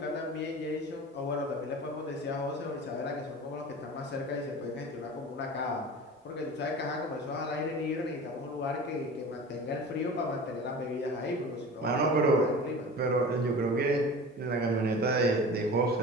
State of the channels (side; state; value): both; normal; correlation 0.36